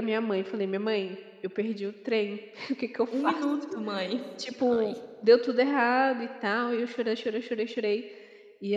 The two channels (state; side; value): identical; both; correlation 1.00